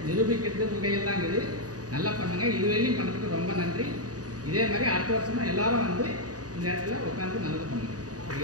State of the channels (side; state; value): left; late; 0.68 ms